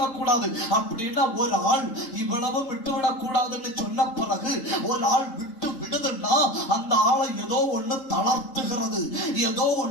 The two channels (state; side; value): late; right; 3.8 ms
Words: கூடாது அப்படின்னா ஒரு ஆள் இவ்வளவு விட்டுவிடக் கூடாதுன்னு சொன்ன பிறகு ஒரு ஆள் விட்டு விடுதுன்னா அந்த ஆளை ஏதோ ஒண்ணு தளர்த்துகிறது, ஏதோ